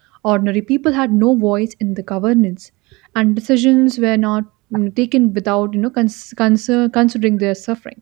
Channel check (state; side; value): quieter; left; 23.6 dB